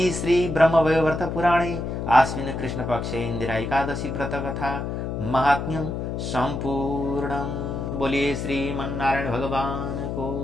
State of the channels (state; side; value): noise; left; hum, 4 dB below the sound